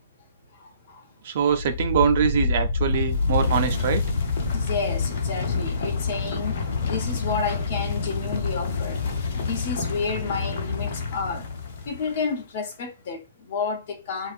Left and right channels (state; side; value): inverted; both; correlation -0.56